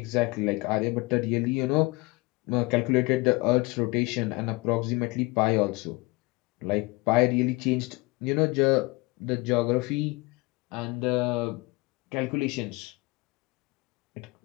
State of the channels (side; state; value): right; quieter; 24.5 dB